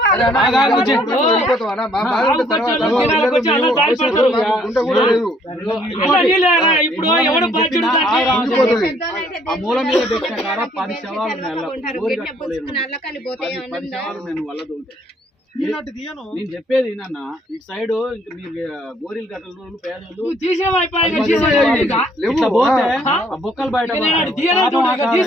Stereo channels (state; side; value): normal; both; correlation 0.64